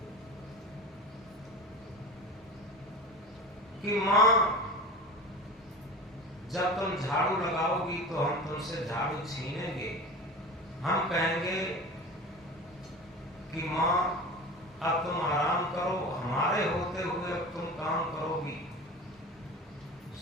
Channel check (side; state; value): both; normal; correlation 0.33